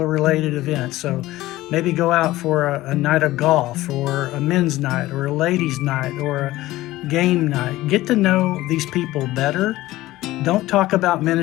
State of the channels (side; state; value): right; quieter; 16.9 dB